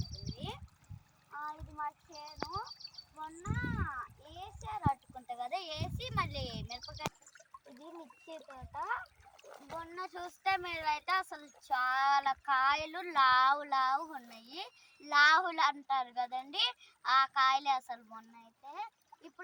ఇది మా చేను. మొన్న వేసారు అట్టుకుంటా కదా, వేసి మళ్ళీ మిరపకాయ. ఇది మిర్చి తోట. మొన్న చూస్తే మీరైతే అసలు చాలా కాయలు లావు లావు ఉన్నాయి. లావులు అంటారు కదండి, ఆ కాయలే అసలు. మొన్న అయితే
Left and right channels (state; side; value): identical; both; correlation 1.00